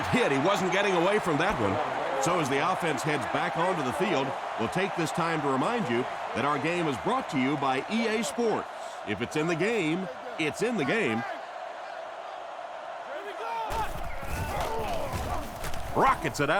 hit. He wasn't getting away from that one. So as the offense heads back onto the field, we'll take this time to remind you that our game is brought to you by EA Sports. If it's in the game, it's in the game. Rockets it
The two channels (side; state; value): both; identical; correlation 1.00